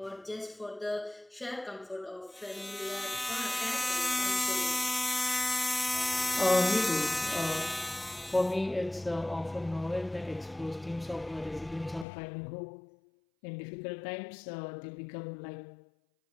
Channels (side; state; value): right; drops out; at 12.1 s